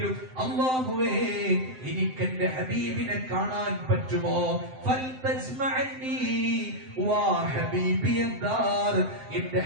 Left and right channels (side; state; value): left; late; 7.7 ms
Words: അല്ലാഹുവേ എനിക്ക് എന്റെ ഹബീബിനെ കാണാൻ പറ്റുമോ? ഫൽതജ്മഅനി വാ ഹബീബിയദ്ദാർ, എന്റെ